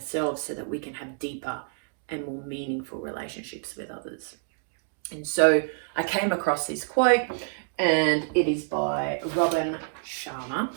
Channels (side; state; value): left; silent; digital silence